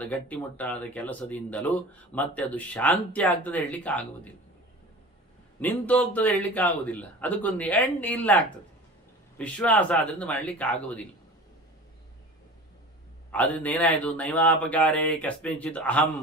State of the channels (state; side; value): normal; both; correlation 0.37